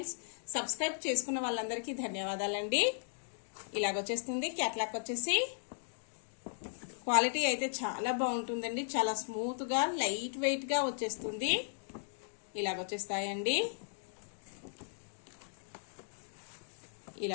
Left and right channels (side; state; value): right; silent; digital silence